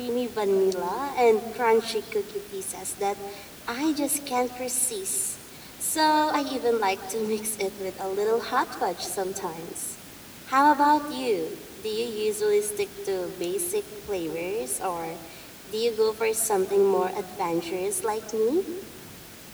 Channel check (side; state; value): both; identical; correlation 1.00